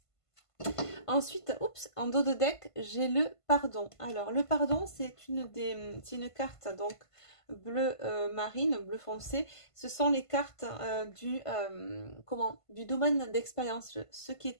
Ensuite, oups, en dos de deck, j'ai le pardon. Alors, le pardon, c'est une carte donc bleu marine, bleu foncé. Ce sont les cartes du domaine d'expérience, ce qui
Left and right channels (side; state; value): right; late; 1.5 ms